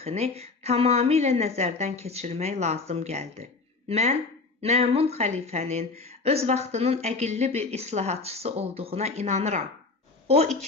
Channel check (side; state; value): right; quieter; 3.9 dB